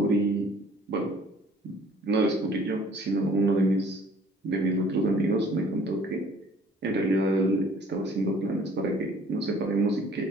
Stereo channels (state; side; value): normal; both; correlation 0.55